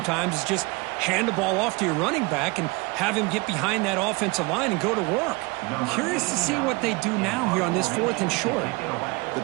is just hand the ball off to your running back and have him get behind that offensive line and go to work. I'm curious to see what they do now here on this 4th and short. The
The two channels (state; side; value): quieter; left; 25.8 dB